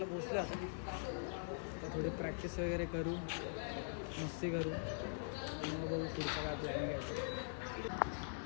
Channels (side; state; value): right; silent; digital silence